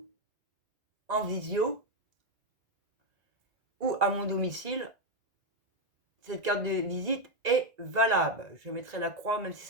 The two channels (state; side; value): late; left; 2.0 ms